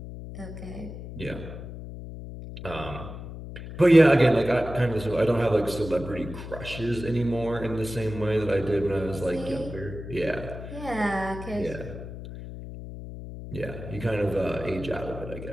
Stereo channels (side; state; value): left; noise; hum, 11 dB below the sound